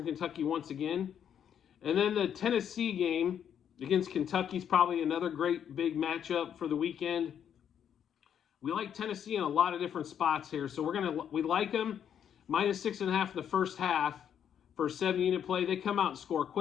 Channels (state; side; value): quieter; right; 8.9 dB